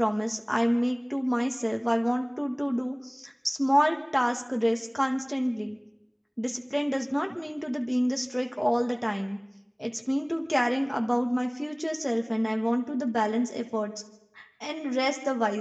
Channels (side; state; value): both; identical; correlation 1.00